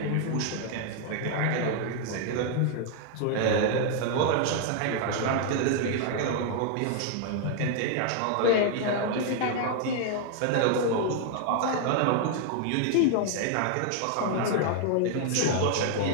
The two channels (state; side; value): different; both; correlation 0.00